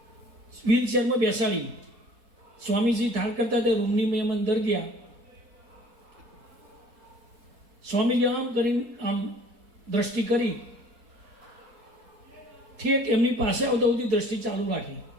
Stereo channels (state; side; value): late; left; 4.1 ms